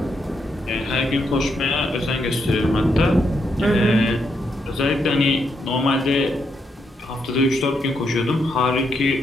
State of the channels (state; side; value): normal; both; correlation 0.79